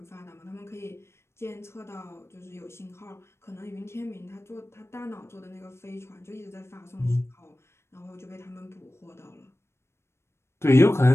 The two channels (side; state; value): right; late; 0.13 ms